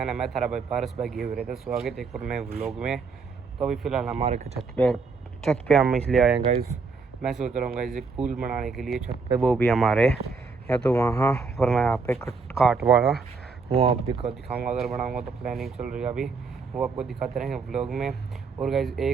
ने। मैं थारा भाई पारस भाई गए हुए थे। स्वागत है एक और नए व्लॉग में। तो अभी फ़िलहाल हमारे छत पे हम इसलिए आए हैं गाइस। मैं सोच रहा हूँ गाइस एक पूल बनाने के लिए छत पे, वो भी हमारे या तो वहाँ पर मैं यहाँ पे काट वाला वो आप दिखाऊँगा। अगर बनाऊँगा तो प्लानिंग चल रही है अभी, वो आपको दिखाते रहेंगे व्लॉग में। और गाइस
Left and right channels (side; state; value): left; quieter; 4.6 dB